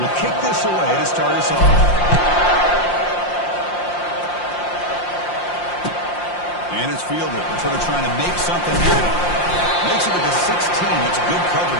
kick this away to start us off. And it's fielded. They're sort of trying to make something happen. Makes it to the 16. That's good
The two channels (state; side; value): late; right; 5.7 ms